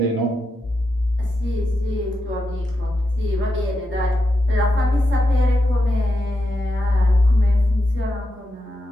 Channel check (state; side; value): normal; both; correlation 0.86